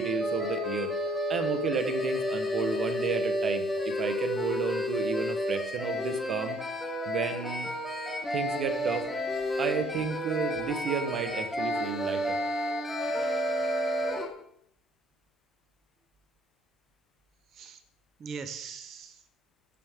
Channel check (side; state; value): both; normal; correlation 0.63